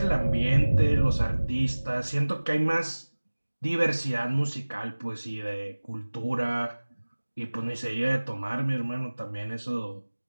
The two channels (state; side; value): inverted; both; correlation -1.00